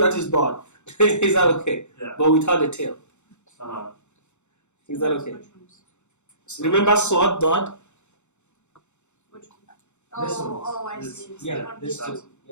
is dot. Is that okay? Yeah. But without the tail. Uh-huh. Is that okay? Which ones? Remember sword dot? Which one? This one. Oh, I This- see. It's Yeah, the one this below. too.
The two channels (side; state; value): right; late; 0.83 ms